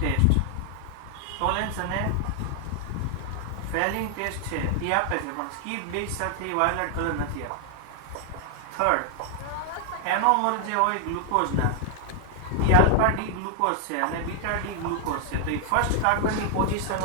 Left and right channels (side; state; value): both; different; correlation 0.00